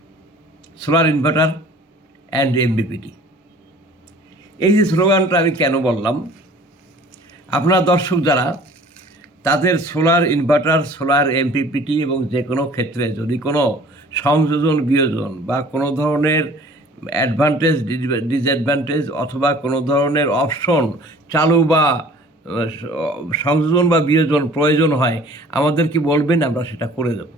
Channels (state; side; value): normal; both; correlation 0.49